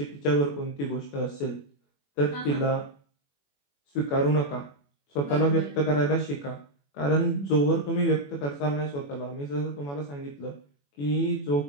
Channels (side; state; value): right; late; 21 ms